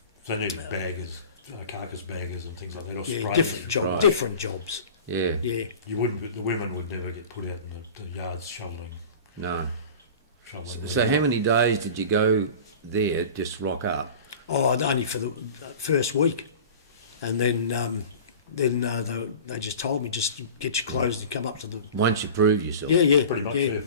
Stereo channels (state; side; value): inverted; both; correlation -0.37